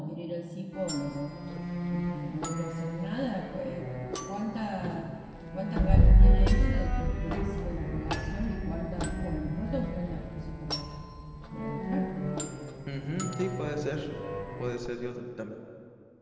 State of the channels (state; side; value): identical; both; correlation 1.00